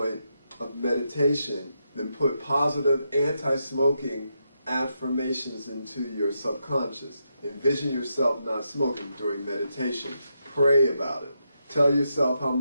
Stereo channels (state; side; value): inverted; both; correlation -0.83